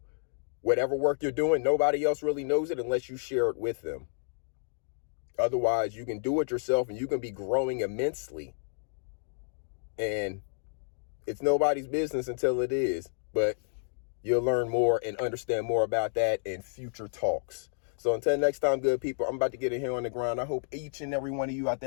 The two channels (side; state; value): right; silent; digital silence